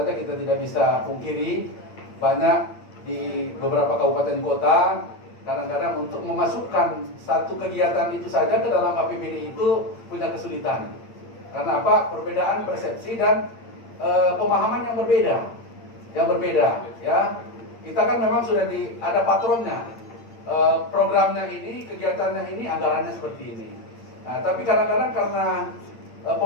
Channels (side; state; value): right; late; 8.8 ms